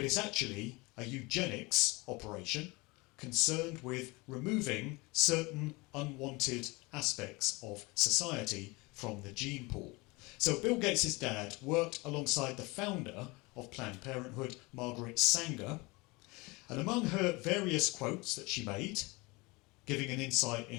it's actually a eugenics operation concerned with removing certain unwanted aspects of society from the gene pool. So Bill Gates' dad worked alongside the founder of Planned Parenthood, Margaret Sanger, and among her various quotes that she made, giving an insight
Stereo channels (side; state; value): right; quieter; 24.8 dB